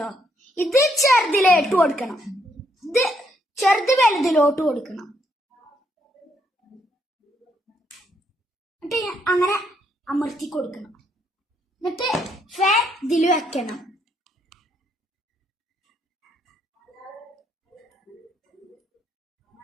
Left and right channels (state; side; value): normal; both; correlation 0.73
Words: ഇത് ചെറുതിലോട്ട് കൊടുക്കണം, ഇത് ചെറുത് വലുതിലോട്ട് കൊടുക്കണം. എന്നിട്ട് അങ്ങനെ അമർത്തി കൊടുക്കണം. എന്നിട്ട് ഫാൻ ഇതിൽ വെക്കണം.